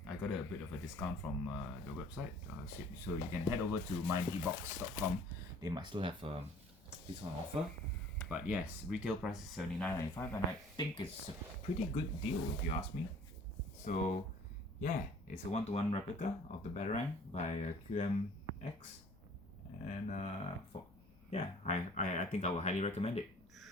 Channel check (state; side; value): noise; left; rumble, 26 dB below the sound